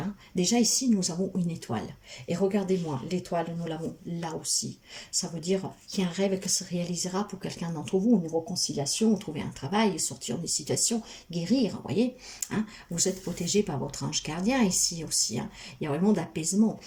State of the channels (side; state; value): both; identical; correlation 1.00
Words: Déjà ici, nous avons une étoile. Et regardez-moi, l'étoile, nous l'avons là aussi. Ça veut dire qu'il y a un rêve qui se réalisera pour quelqu'un d'entre vous, une réconciliation, trouver un travail, sortir des situations, guérir, vous voyez. Hein? Vous êtes protégé par votre ange gardien ici aussi. Hein? Il y a vraiment d'apaisement.